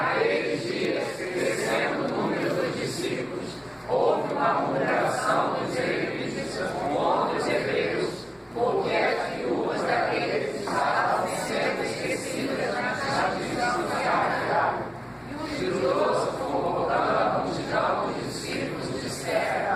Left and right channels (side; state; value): both; identical; correlation 1.00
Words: dias, crescendo o número dos discípulos, houve uma murmuração dos israelitas contra os hebreus, porque as viúvas daqueles estavam sendo esquecidas na tradição sagrada. E os doze, convocando a multidão dos discípulos,